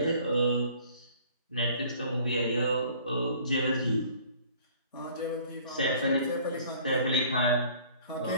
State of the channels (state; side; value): inverted; both; correlation -0.53